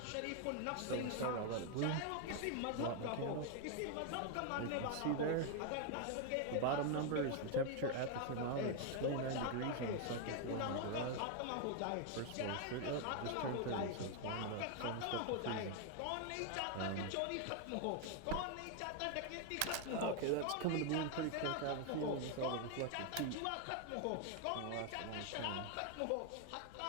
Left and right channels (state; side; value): different; both; correlation 0.01